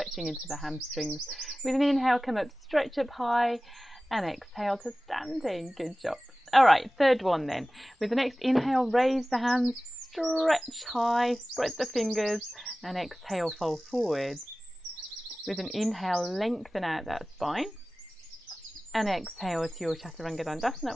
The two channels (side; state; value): both; normal; correlation 0.97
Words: into the hamstrings. With an inhale, come up, stretch up high, and exhale to standing. Good job. All right, third one then. With the next inhale, raise the hands, stretch high, spread the fingers, and exhale, fold forward. With an inhale, lengthen out that spine, and exhale to your Chaturanga